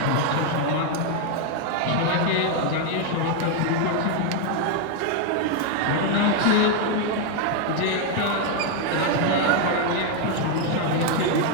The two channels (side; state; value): both; different; correlation 0.01